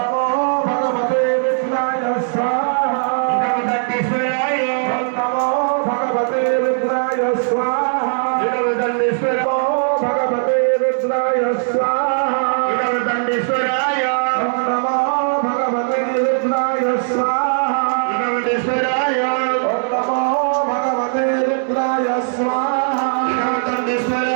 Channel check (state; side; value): silent; left; digital silence